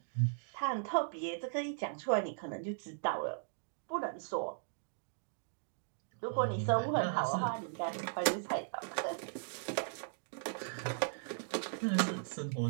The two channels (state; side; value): silent; left; digital silence